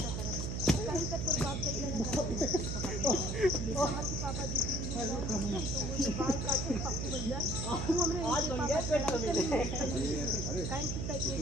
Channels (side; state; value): right; noise; hum, 3 dB below the sound